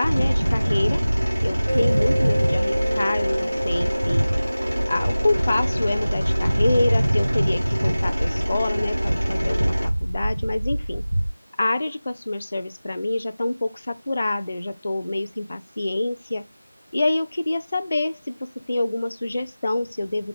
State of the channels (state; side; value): inverted; both; correlation -0.97